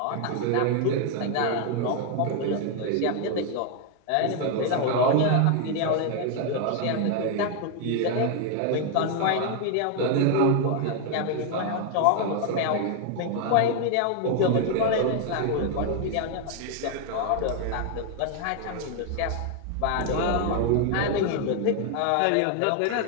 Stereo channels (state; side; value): different; both; correlation 0.00